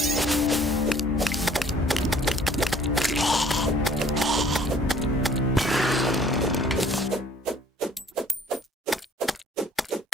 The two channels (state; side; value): normal; both; correlation 0.56